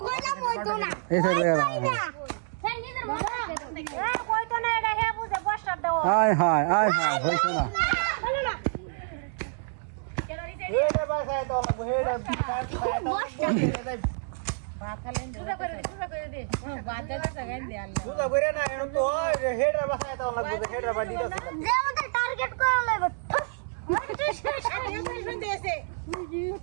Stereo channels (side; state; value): left; silent; digital silence